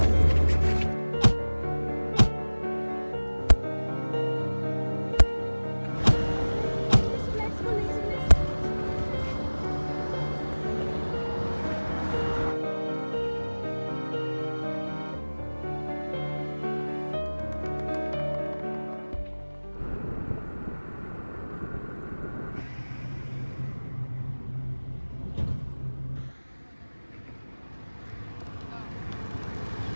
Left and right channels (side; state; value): both; inverted; correlation -1.00